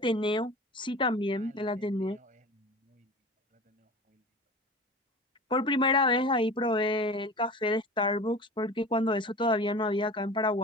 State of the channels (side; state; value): both; normal; correlation 0.36